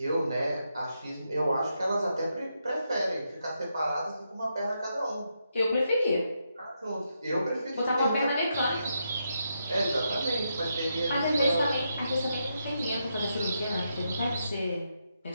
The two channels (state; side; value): inverted; both; correlation -0.82